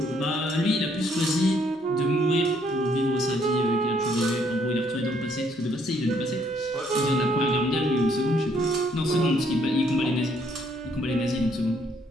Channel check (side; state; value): both; normal; correlation 0.68